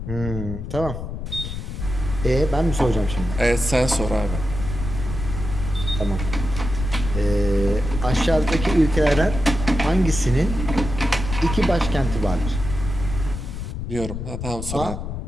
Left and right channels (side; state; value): left; noise; rumble, 6 dB below the sound